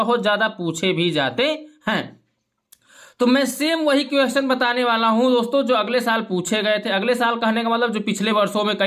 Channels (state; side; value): identical; both; correlation 1.00